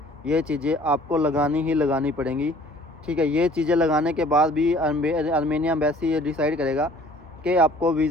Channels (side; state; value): both; normal; correlation 0.53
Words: ये चीज़ें आपको लगानी ही लगानी पड़ेंगी, ठीक है। ये चीज़ें लगाने के बाद भी आर्मेनिया एम्बेसी ये डिसाइड करेगा कि आपको